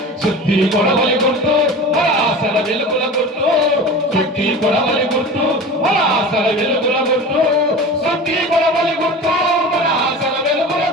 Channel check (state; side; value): normal; both; correlation 0.34